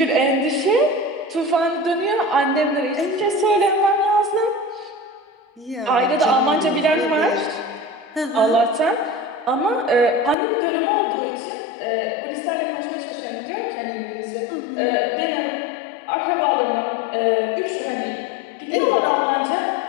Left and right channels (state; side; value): drops out; right; at 10.4 s